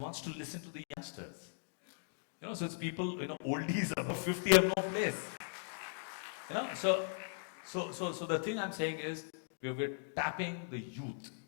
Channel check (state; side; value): silent; right; digital silence